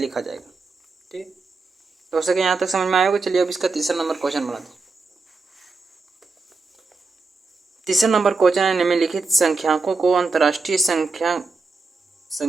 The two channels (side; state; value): left; quieter; 4.0 dB